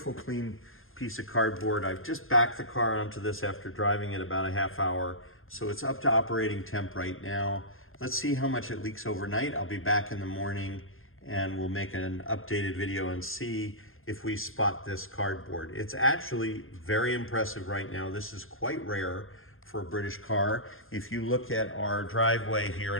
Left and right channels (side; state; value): right; late; 0.60 ms